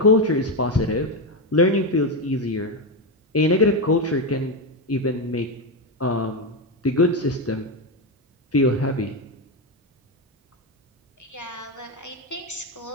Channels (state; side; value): normal; both; correlation 0.10